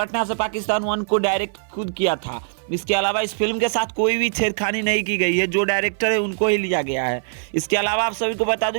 से पाकिस्तान 1 को डायरेक्ट खुद किया था। इसके अलावा इस फिल्म के साथ कोई भी छेड़खानी नहीं की गई है, जो डायरेक्टर है उनको ही लिया गया है। इसके अलावा आप सभी को बता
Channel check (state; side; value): silent; left; 58 dB below the other